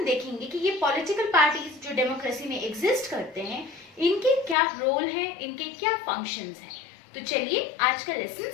देखेंगे कि ये पॉलिटिकल पार्टीज जो डेमोक्रेसी में एग्जिस्ट करते हैं इनके क्या रोल है, इनके क्या फंक्शंस हैं। तो चलिए आज का लेसन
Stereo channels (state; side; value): drops out; right; at 4.5 s